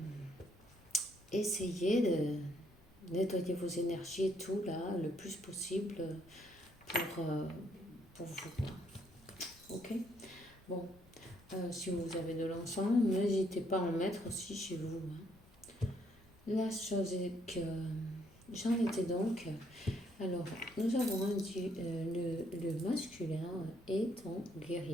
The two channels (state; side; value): normal; both; correlation 0.70